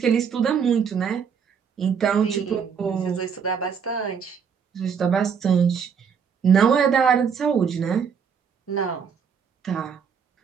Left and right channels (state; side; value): quieter; left; 6.7 dB